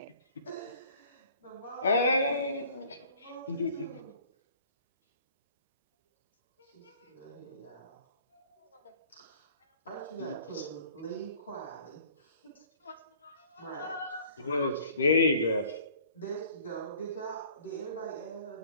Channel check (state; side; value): inverted; both; correlation -0.53